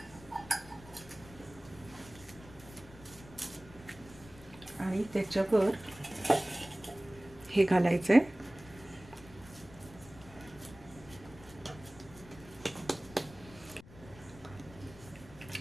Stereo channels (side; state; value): left; noise; rumble, 19 dB below the sound